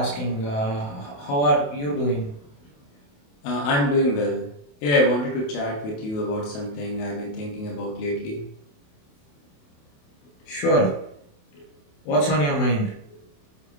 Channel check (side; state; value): right; late; 28 ms